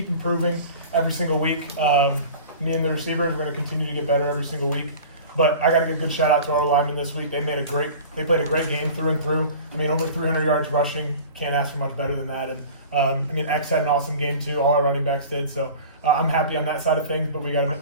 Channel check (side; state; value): both; inverted; correlation -0.39